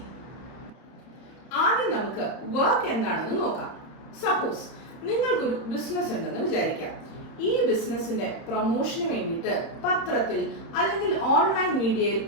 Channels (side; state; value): right; late; 31 ms